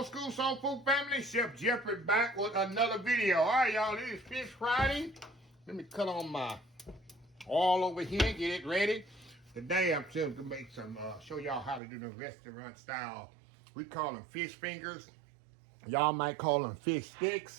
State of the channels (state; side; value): drops out; left; at 11.8 s